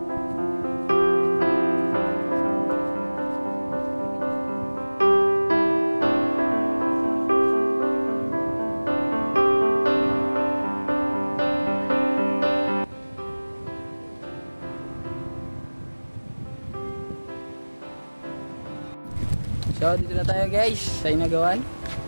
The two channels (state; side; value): inverted; both; correlation -1.00